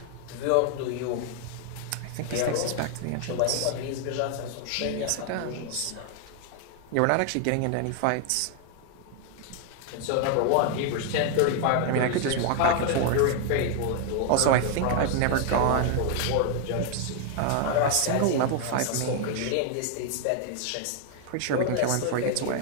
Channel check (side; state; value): both; different; correlation 0.00